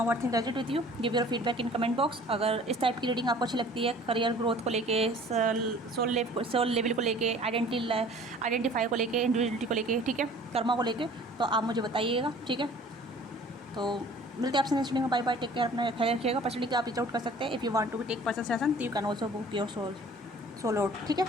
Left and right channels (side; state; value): both; normal; correlation 0.49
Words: what think resonate with you, give your feedback in comment box. अगर इस टाइप की रीडिंग आपको अच्छी लगती है, करियर ग्रोथ को लेके, सोल लेवल को लेके, आइडेंटिफाई को लेके, इंडिविजुअलिटी को लेके, ठीक है, कर्मा को लेके, तो आप मुझे बताइएगा। ठीक है, तो मिलते हैं आपसे नेक्स्ट वीडियो में। बाय बाय, टेक केयर, अपना ख्याल रखिएगा। पर्सनली आप रीच आउट कर सकते हैं। If you want to take personal session तो you can also book your soul out. ठीक है,